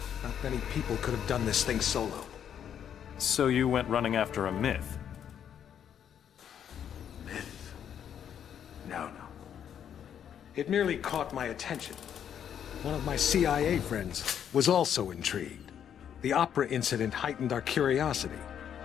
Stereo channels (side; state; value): right; quieter; 9.0 dB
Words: Not many people could have done this thing solo. So you went running after a myth? Myth? No. It merely caught my attention. One of my CIA friends was also intrigued. The opera incident heightened our curiosity.